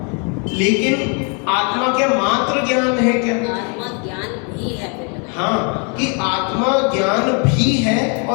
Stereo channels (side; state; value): right; quieter; 37.0 dB